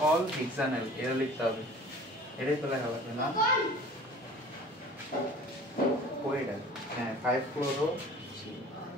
all hexanal। এটা লিখতে হবে, এটাই তো লেখা লাগবে না? ওইটা হ্যাঁ 5 ক্লোরো।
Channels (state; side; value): normal; both; correlation 0.45